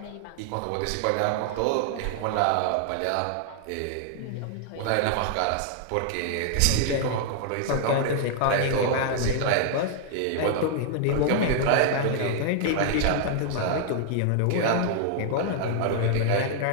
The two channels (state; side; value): different; both; correlation 0.00